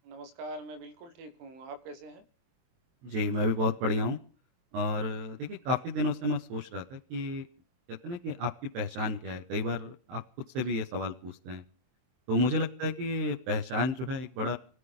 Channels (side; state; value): left; late; 23 ms